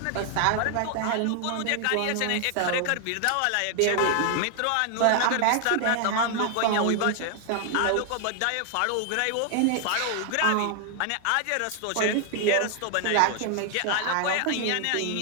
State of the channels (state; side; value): different; both; correlation 0.00